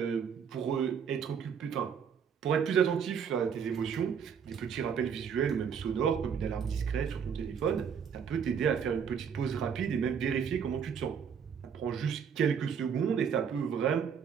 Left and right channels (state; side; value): quieter; left; 7.2 dB